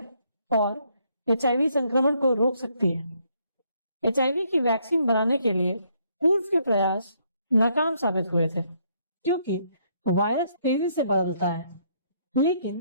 और एचआईवी संक्रमण को रोक सकती है। एचआईवी की वैक्सीन बनाने के लिए पूर्व के प्रयास नाकाम साबित हुए थे, क्योंकि वायरस तेजी से बदलता है, लेकिन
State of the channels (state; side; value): inverted; both; correlation -0.71